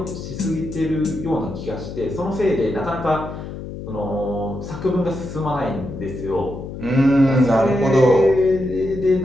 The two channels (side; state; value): left; noise; hum, 10 dB below the sound